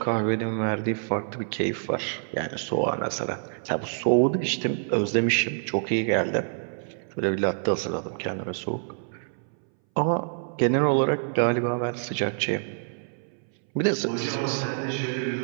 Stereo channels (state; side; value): silent; left; 60 dB below the other